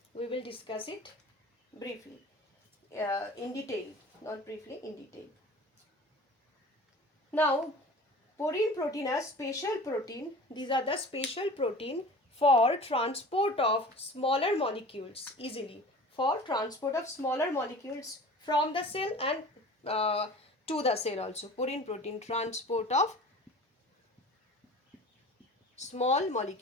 we will discuss it briefly, in detail, not briefly, in detail. Now, porine protein are special protein. These are the special protein for transport of smaller molecules easily, for transport of smaller molecules from the cell and to the cell also. Purine protein, transport of small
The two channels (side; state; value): both; normal; correlation 0.40